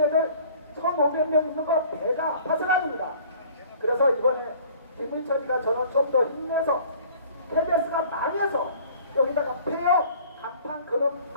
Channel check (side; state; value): both; inverted; correlation -0.51